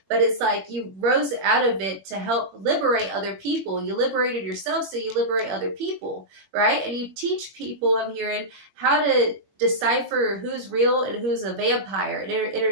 but it's like you rose out of it to help liberate other people. You liberated yourself, so you liberate other people, right? And you teach people, I'm hearing, how to decipher who's real and who's a vampire, an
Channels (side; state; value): left; late; 21 ms